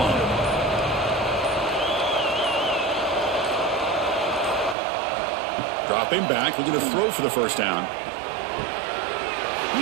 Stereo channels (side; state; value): left; drops out; at 4.8 s